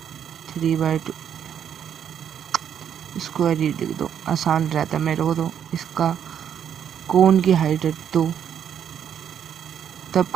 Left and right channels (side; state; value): left; quieter; 8.9 dB